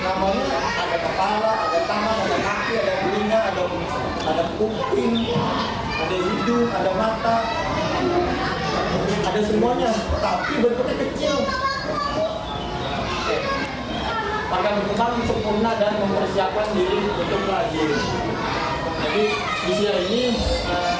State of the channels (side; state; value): both; identical; correlation 1.00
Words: namanya ada kepala, ada tangan, ada kaki, ada telinga, ada kuping, ada hidung, ada mata, ada semuanya, tapi bentuknya kecil. Akan berkembang sempurna dan mempersiapkan diri untuk lahir. Jadi usia ini